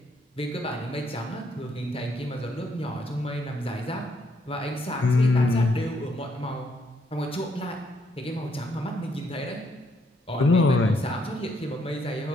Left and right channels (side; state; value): both; normal; correlation 0.72